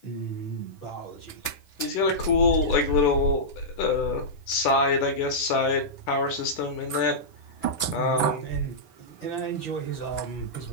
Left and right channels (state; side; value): late; right; 10 ms